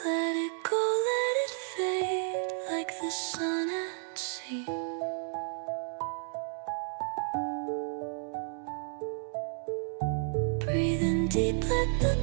Let it go, let it fade like the sun at sea. Breathing deep, let the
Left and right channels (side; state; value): left; silent; 57 dB below the other